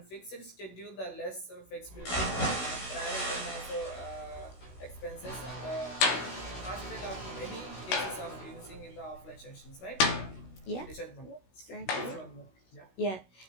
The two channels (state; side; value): late; right; 16 ms